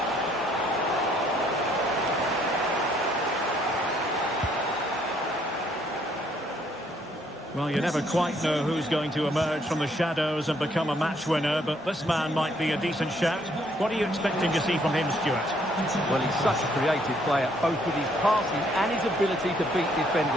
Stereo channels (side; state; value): both; normal; correlation 0.67